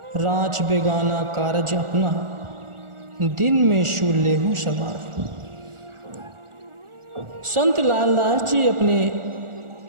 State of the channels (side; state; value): left; late; 1.4 ms